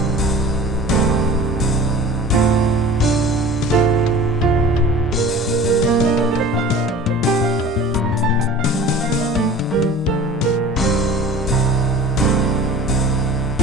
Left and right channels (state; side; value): normal; both; correlation 0.41